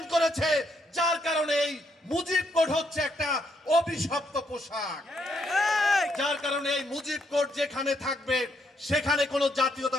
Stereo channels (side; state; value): both; normal; correlation 0.75